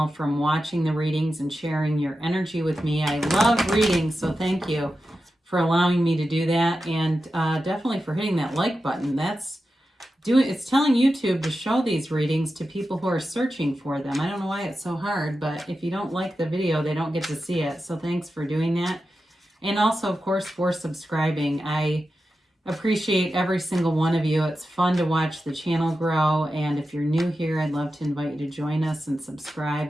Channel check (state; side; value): normal; both; correlation 0.91